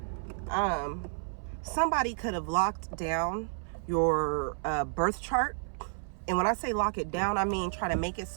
Somebody could have locked down your birth chart. And when I say lock it down, I mean try to make it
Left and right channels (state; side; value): silent; left; 57 dB below the other